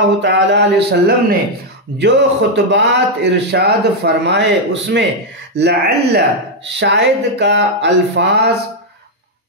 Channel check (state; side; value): normal; both; correlation 0.00